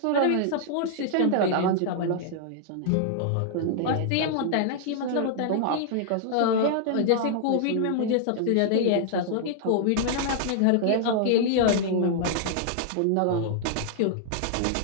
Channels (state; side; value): different; both; correlation -0.01